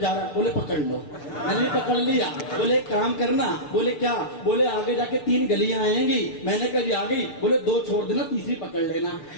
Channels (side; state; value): right; late; 6.8 ms